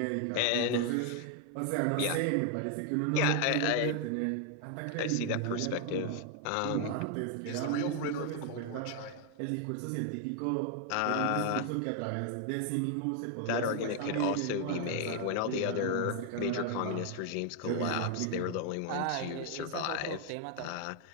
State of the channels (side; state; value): both; different; correlation 0.00